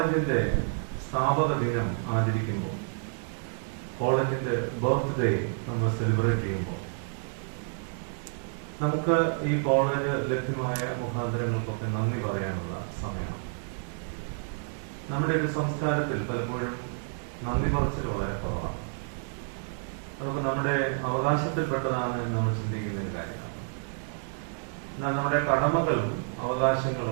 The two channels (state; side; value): silent; left; 58 dB below the other